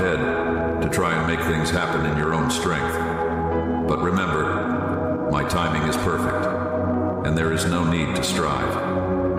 to try and make things happen in your own strength. But remember, my timing is perfect, and there is no need to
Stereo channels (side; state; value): both; identical; correlation 1.00